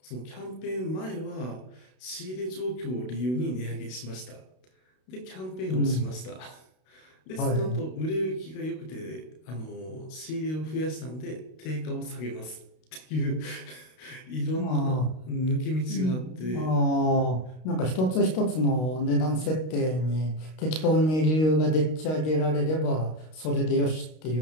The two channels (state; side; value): late; right; 32 ms